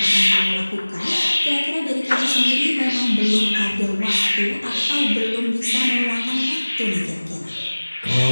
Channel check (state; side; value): inverted; both; correlation -1.00